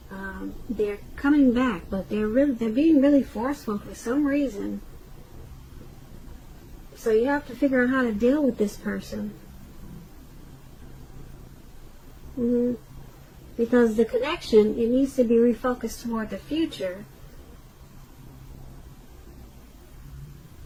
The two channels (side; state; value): both; identical; correlation 1.00